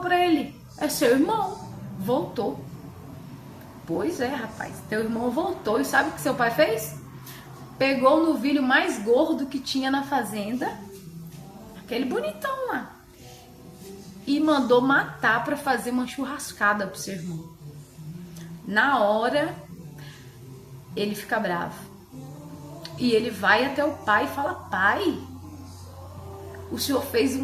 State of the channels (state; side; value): identical; both; correlation 1.00